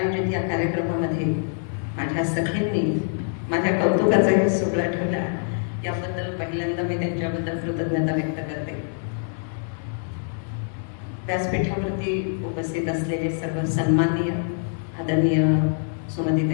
कार्यक्रमामध्ये माझ्या सखींनी माझ्या कौतुकाचाही सोहळा ठेवला, याबद्दल पहिल्यांदा मी त्यांच्याबद्दल कृतज्ञता व्यक्त करते. व्यासपीठावरती उपस्थित असलेले सर्व सन्माननीय आदरणीय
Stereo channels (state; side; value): silent; right; 62 dB below the other